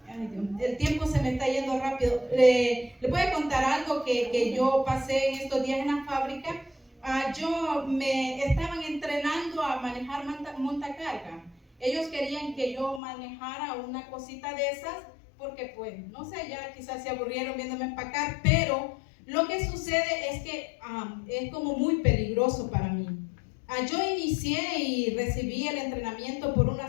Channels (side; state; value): right; drops out; at 13.0 s